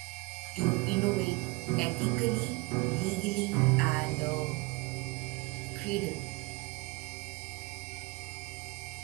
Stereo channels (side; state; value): left; quieter; 25.4 dB